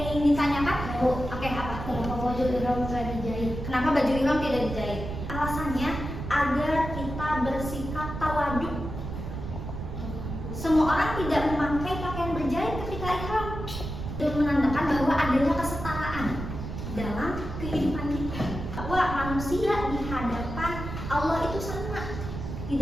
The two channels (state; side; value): noise; right; rumble, 7 dB below the sound